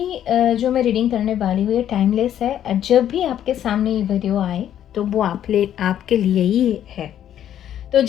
जो मैं रीडिंग करने वाली हूँ ये टाइमलेस है। जब भी आपके सामने ये वीडियो आए तो वो आपके लिए ही है। तो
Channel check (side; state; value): right; quieter; 10.6 dB